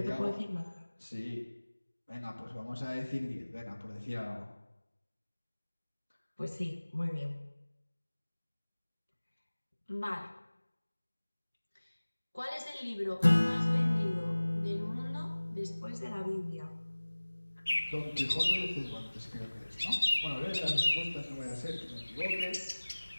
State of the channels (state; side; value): inverted; both; correlation -1.00